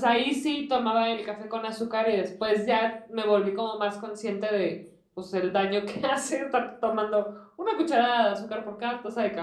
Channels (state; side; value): identical; both; correlation 1.00